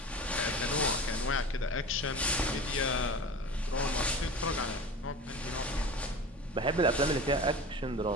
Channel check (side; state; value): both; normal; correlation 0.34